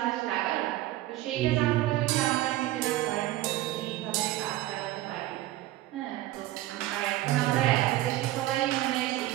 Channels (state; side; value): quieter; left; 15.7 dB